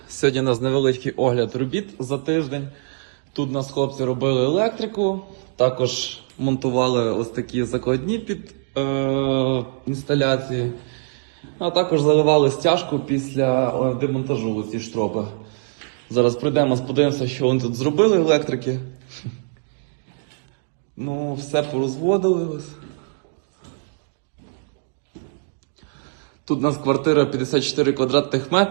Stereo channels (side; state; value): left; silent; 64 dB below the other